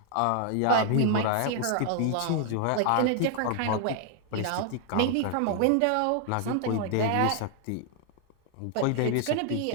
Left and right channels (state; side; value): different; both; correlation 0.00